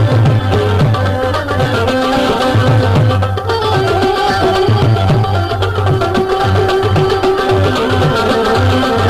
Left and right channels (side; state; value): both; identical; correlation 1.00